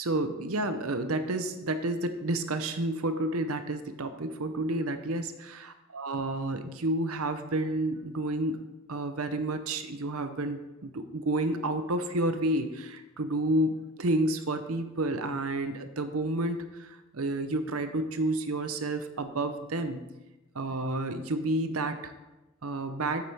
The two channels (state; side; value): normal; both; correlation 0.30